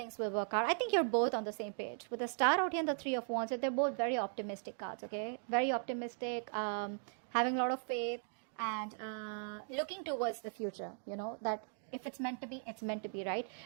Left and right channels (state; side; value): silent; left; 52 dB below the other